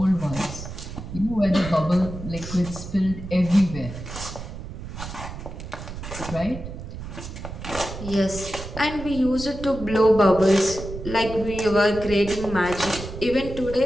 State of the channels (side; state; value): right; noise; rumble, 10 dB below the sound